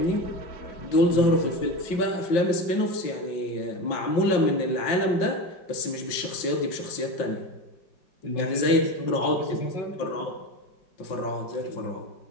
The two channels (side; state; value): right; late; 5.8 ms